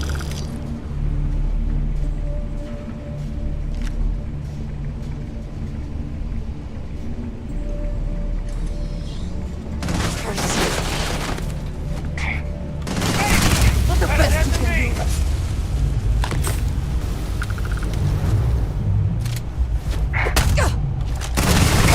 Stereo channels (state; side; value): identical; both; correlation 1.00